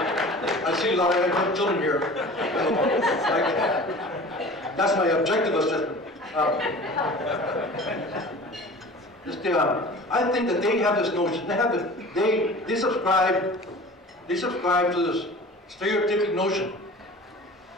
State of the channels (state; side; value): normal; both; correlation 0.40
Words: I see a lot of children here. That's my objective assessment. I think that they have this notion. They subscribe to this stereotypic notion